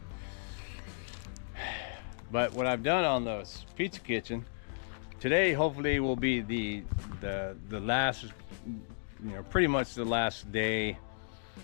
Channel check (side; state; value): right; silent; digital silence